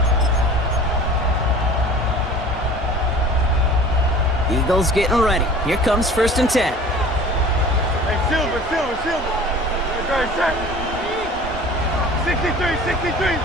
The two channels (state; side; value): normal; both; correlation 0.43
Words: Eagles getting ready. Here comes 1st and 10. Hey, Silver. Right, sir. 63.